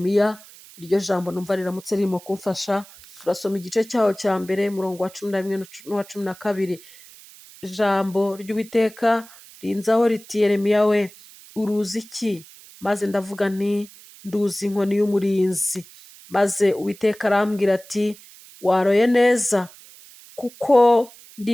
iryo jambo numva riramutse ririmo kumfasha. Turasoma igice cyaho cya mbere, umurongo wa 11 n'uwa 12. Ijambo ry'Uwiteka rinzaho riti, Yeremiya we, uruzi iki? Maze ndavuga nti, nduzi inkoni y'umurinzi. Maze Uwiteka arambwira ati, waroye neza, kuko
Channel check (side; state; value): right; noise; hiss, 21 dB below the sound